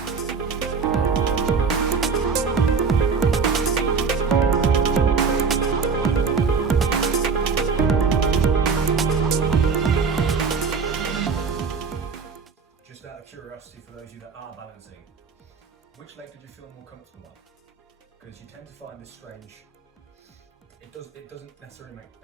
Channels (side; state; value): left; quieter; 5.3 dB